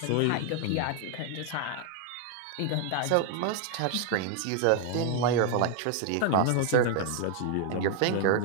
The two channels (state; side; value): different; both; correlation 0.00